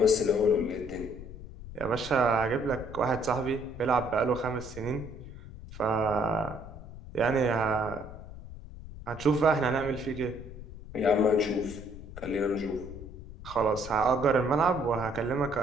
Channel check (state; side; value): noise; left; rumble, 13 dB below the sound